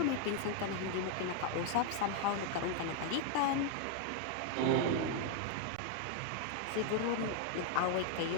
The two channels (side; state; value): both; different; correlation 0.00